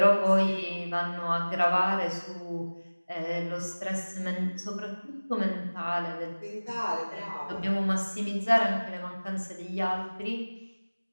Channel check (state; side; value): inverted; both; correlation -1.00